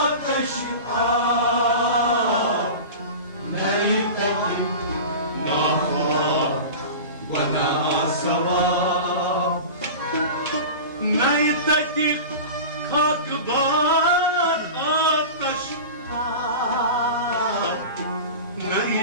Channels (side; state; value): both; inverted; correlation -0.31